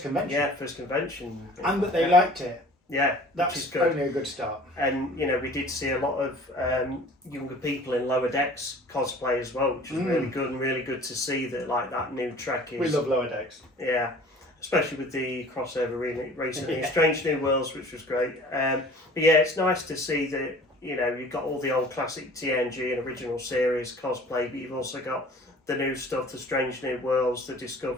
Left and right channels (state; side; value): normal; both; correlation 0.47